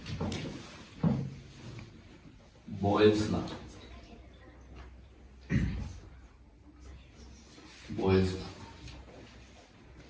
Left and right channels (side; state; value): both; identical; correlation 1.00